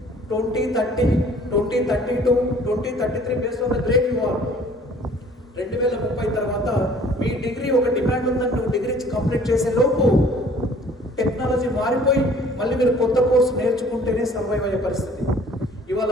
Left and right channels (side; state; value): both; normal; correlation 0.53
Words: 2030, 2032, 2033 based on the grade you are. 2030 తర్వాత మీ డిగ్రీ ఒక డిమాండ్ ఉందని నువ్వు డిగ్రీ కంప్లీట్ చేసే లోపు టెక్నాలజీ మారిపోయి మళ్ళీ మీరు కొత్త కోర్సు నేర్చుకుంటేనే సర్వైవ్ అయ్యే పరిస్థితి. ఇవాళ